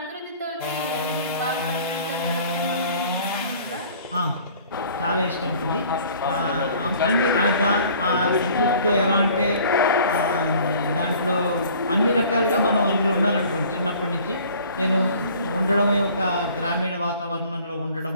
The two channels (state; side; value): inverted; both; correlation -0.51